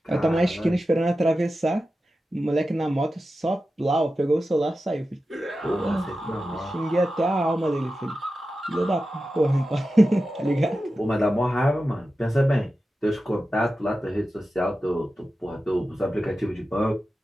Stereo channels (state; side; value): normal; both; correlation 0.92